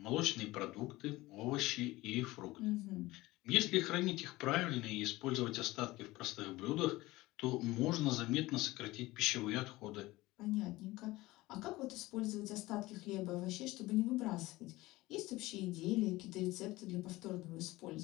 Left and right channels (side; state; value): right; quieter; 19.2 dB